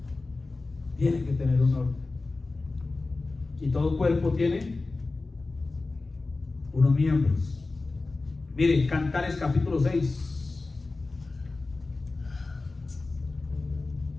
Tiene que tener un orden. Y todo cuerpo tiene unos miembros. Miren, Cantares capítulo 6.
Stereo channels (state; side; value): quieter; right; 3.5 dB